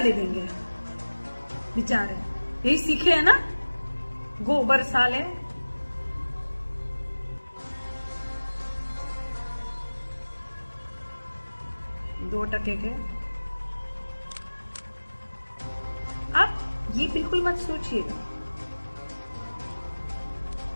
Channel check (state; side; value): inverted; both; correlation -1.00